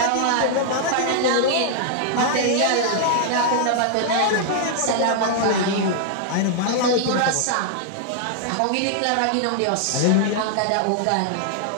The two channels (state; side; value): different; both; correlation -0.01